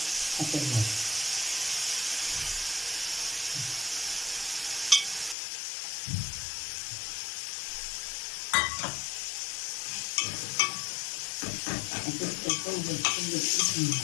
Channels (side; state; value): right; drops out; at 5.4 s